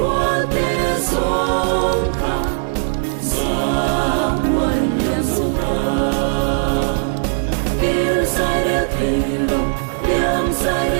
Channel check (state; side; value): silent; left; digital silence